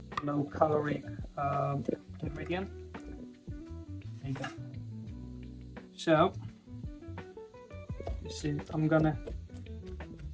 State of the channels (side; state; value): both; identical; correlation 1.00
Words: low caloric ingredient. There you go. So you see, I'm gonna